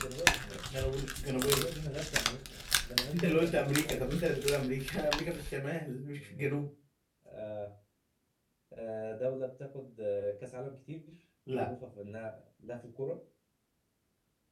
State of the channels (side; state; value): both; identical; correlation 1.00